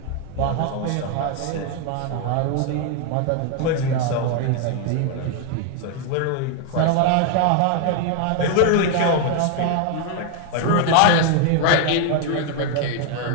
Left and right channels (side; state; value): both; different; correlation 0.01